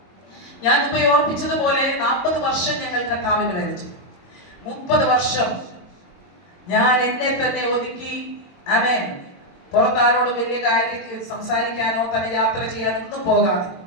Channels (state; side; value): late; right; 22 ms